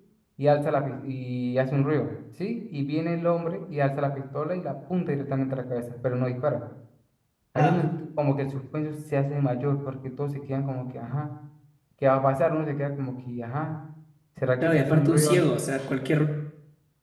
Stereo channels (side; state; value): both; identical; correlation 1.00